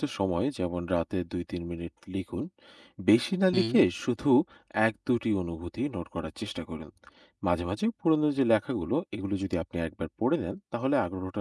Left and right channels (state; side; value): identical; both; correlation 1.00